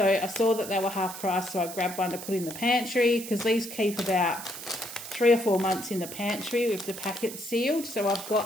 I saw that they were half price, so I grabbed one to put in the pantry because these keep about 3 or 4 months in the pantry with the packet sealed. So I've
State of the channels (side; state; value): right; noise; hiss, 11 dB below the sound